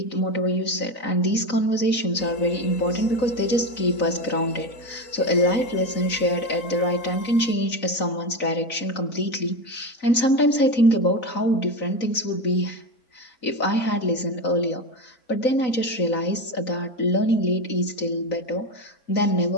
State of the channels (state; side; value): late; right; 4.0 ms